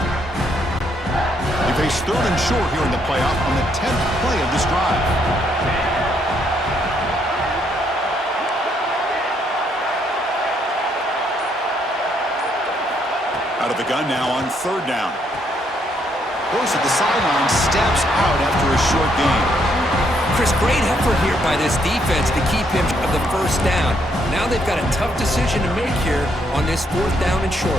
It's 3rd and short here in the playoff on the 10th play of this drive. Out of the gun now on 3rd down. Goes to the sideline, steps out after a short gain. Chris, great effort here by this defense to keep him of the first down. Now they've got a tough decision to make here on this 4th down and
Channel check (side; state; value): both; normal; correlation 0.72